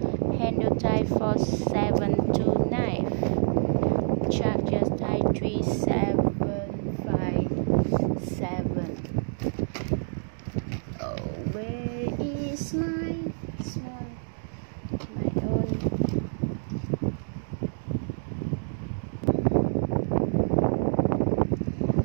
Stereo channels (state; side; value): silent; left; digital silence